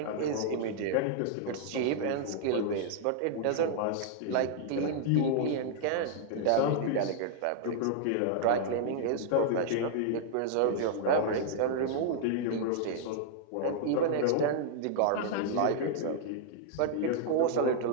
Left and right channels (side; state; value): both; different; correlation -0.01